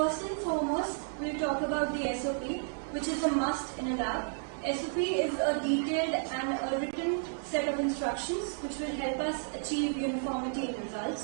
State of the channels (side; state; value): left; silent; digital silence